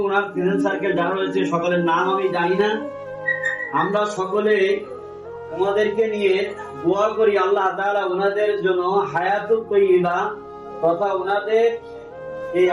ওনার ফ্রেন্ড সার্কেল যারা রয়েছে সকলের নাম আমি জানি না। আমরা সকলে ওনাদেরকে নিয়ে দোয়া করি আল্লাহ তাআলা ওনাদের জন্য হায়াতুত তাইয়্যিবা তথা ওনাদের এই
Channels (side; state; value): both; identical; correlation 1.00